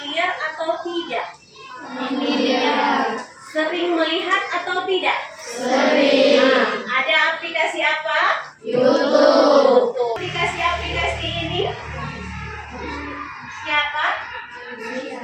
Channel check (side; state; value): both; identical; correlation 1.00